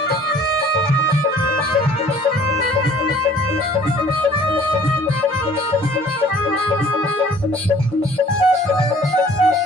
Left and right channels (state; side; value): normal; both; correlation 0.53